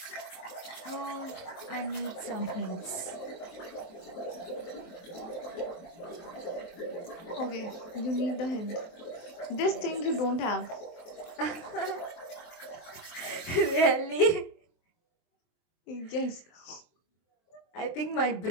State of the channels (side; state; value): right; late; 23 ms